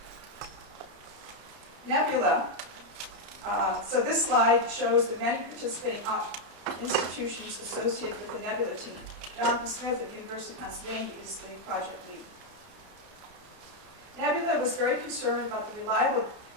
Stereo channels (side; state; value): left; late; 30 ms